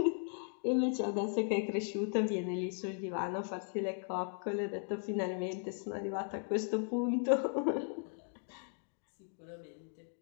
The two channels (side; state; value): right; silent; 53 dB below the other